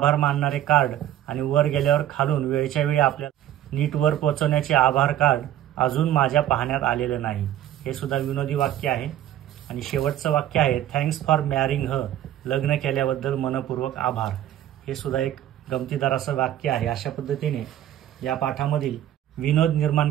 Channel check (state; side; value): quieter; left; 12.1 dB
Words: मानणारे कार्ड आणि वर गेल्यावर खालून वेळच्या वेळी आपल्याला नीट वर पोहोचवण्याचे आभार कार्ड अजून माझ्या पाहण्यात आलेलं नाही. हे सुद्धा विनोदी वाक्य आहे. आणि शेवटचं वाक्य आहे, थँक्स फॉर मॅरिंग हर, लग्न केल्याबद्दल मनपूर्वक आभार. हे सुद्धा एक गमतीदार असं वाक्य आहे. अशा पद्धतीने या पाठामधील विनोद